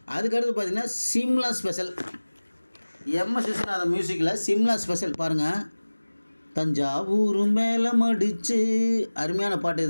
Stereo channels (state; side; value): inverted; both; correlation -1.00